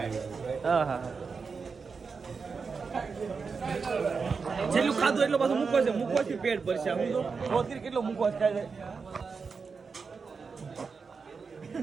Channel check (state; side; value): quieter; left; 5.1 dB